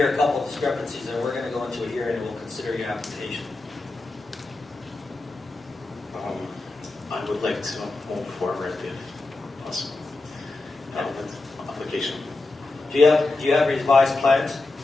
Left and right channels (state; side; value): quieter; right; 3.2 dB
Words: a couple of discrepancies, then we're going to go into a hearing and we'll consider your application. I would like to move forward if possible with application. Do you have revised plans?